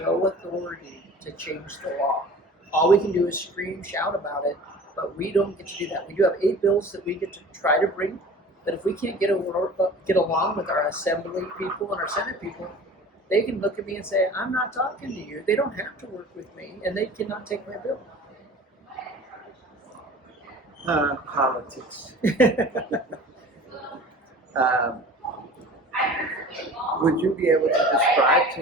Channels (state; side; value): normal; both; correlation 0.42